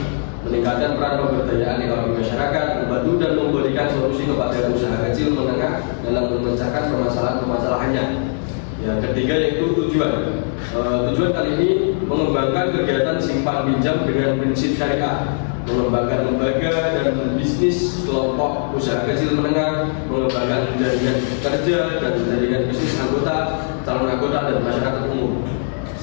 meningkatkan peran pemberdayaan ekonomi masyarakat, membantu dan memberikan solusi kepada usaha kecil menengah dalam memecahkan permasalahan-permasalahannya. Yang ketiga yaitu tujuan. Tujuan kali ini mengembangkan kegiatan simpan pinjam dengan prinsip syariah, mengembangkan lembaga dan bisnis kelompok usaha kecil menengah, mengembangkan jaringan kerja dan jaringan bisnis anggota, calon anggota, dan masyarakat umum.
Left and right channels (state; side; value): silent; right; digital silence